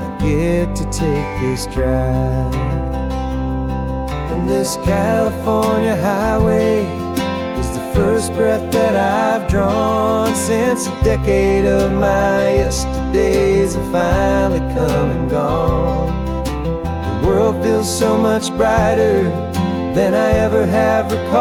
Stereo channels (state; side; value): identical; both; correlation 1.00